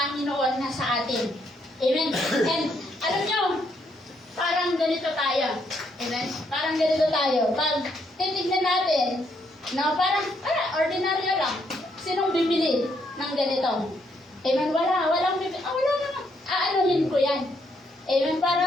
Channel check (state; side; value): normal; both; correlation 0.74